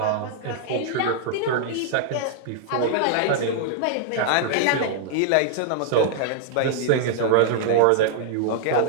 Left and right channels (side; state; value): both; different; correlation -0.01